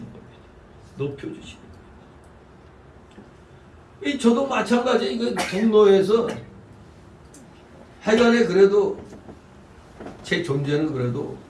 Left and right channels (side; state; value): both; identical; correlation 1.00